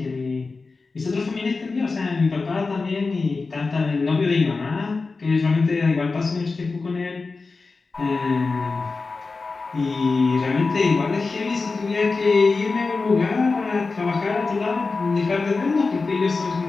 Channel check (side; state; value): right; quieter; 4.1 dB